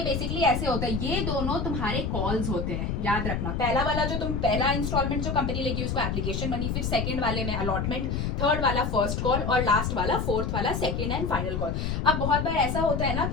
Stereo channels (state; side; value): noise; left; rumble, 1 dB below the sound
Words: बेसिकली ऐसे होता है, ये दोनों तुम्हारे कॉल्स होते हैं, याद रखना। पहला वाला जो तुम पहला इंस्टॉलमेंट जो कंपनी लेगी उसको एप्लीकेशन मनी, फिर सेकंड वाले में अलॉटमेंट, थर्ड वाला फर्स्ट कॉल और लास्ट वाला फोर्थ वाला सेकंड एंड फाइनल कॉल। अब बहुत बार ऐसा होता है ना